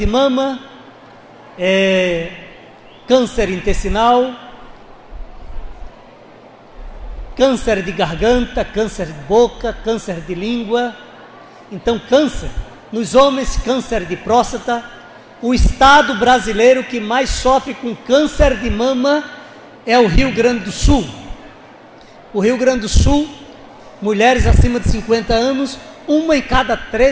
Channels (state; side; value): identical; both; correlation 1.00